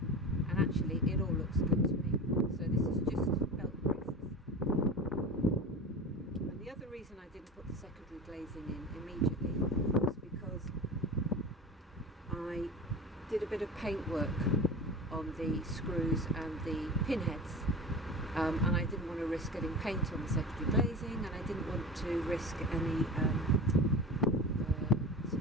and actually it all looks good to me. So this is just belt braces. And the other reason I didn't put the secondary glazing in immediately was because I did a bit of paint work on the screws and the pinheads, and I didn't want to risk getting paint on the secondary glazing, and I didn't want to risk any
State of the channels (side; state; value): both; normal; correlation 0.31